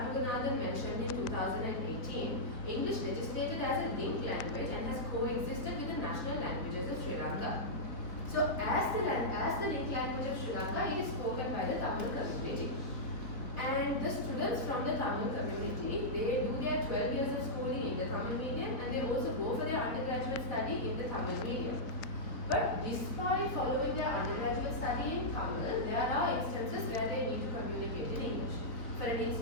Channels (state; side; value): late; right; 4.2 ms